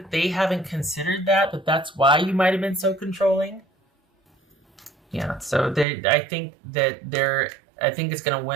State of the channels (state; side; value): drops out; left; at 5.9 s